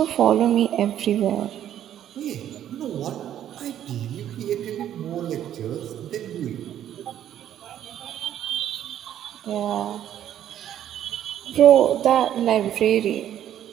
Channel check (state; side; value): quieter; left; 11.0 dB